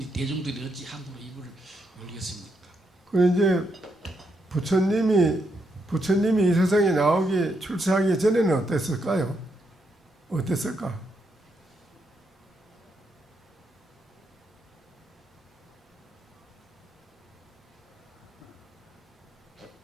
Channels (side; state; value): both; normal; correlation 0.80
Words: 대중들이 어찌 함부로 입을 열겠습니까? 그 이제 부처님이 이 세상에 나오기 출세하기 전에는 어땠을까요? 어땠을까?